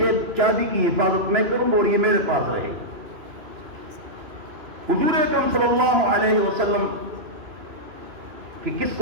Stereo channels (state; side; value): late; left; 3.0 ms